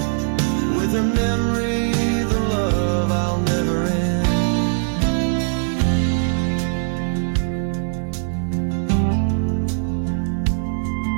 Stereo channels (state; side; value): silent; left; 65 dB below the other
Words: With her memory, the love I'll never end.